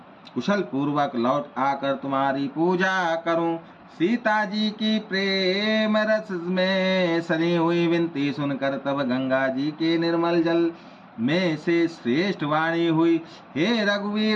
कुशल पूर्वक लौट आकर तुम्हारी पूजा करूं। सीता जी की प्रेम रस में सनी हुई विनती सुनकर तब गंगा जी के निर्मल जल में से श्रेष्ठ वाणी हुई, हे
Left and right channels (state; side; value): identical; both; correlation 1.00